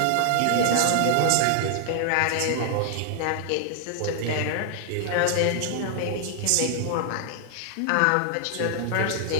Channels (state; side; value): different; both; correlation 0.00